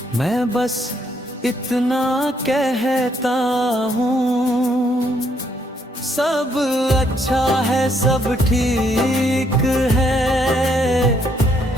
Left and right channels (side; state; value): both; normal; correlation 0.71